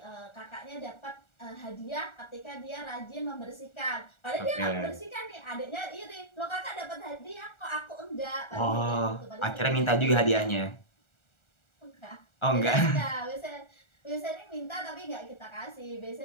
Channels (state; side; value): late; right; 1.4 ms